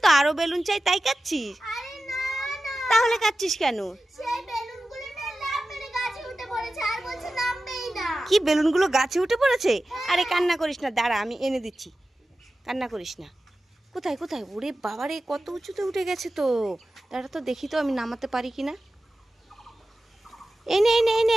তো, আরো বেলুন চাই তাই কাচ্ছিস? তাহলে কাচ্ছিস কেন? কি বেলুনগুলো গাছে উঠে পড়েছে? আরে কান্না করিস না, দাঁড়া আমি এনে দিচ্ছি, কান্না করিস না। কোথায় কোথায়? ওরে বাবারে কত উঁচুতে উঠে গেছে তো। দাঁড়া তো দেখি তো আমি নামাতে পারি কিনা। এই নে এই নে এই নে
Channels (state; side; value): normal; both; correlation 0.94